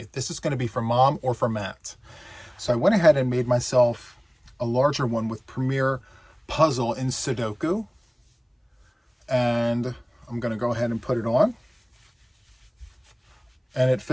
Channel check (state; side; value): identical; both; correlation 1.00